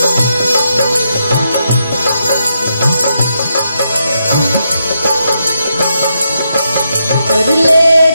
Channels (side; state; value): both; inverted; correlation -0.82